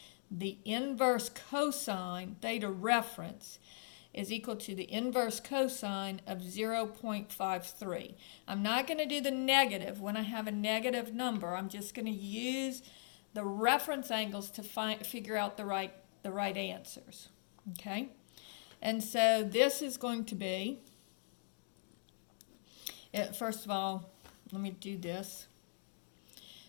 the inverse cosine, theta reference, is equal to the inverse cosine of 0.53. I'm not going to do the negative when I have a negative number. I'm just going to use the reference angles to figure out the right answers. Okay? And so this is going to be, first of all, let me do this.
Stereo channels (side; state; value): right; silent; digital silence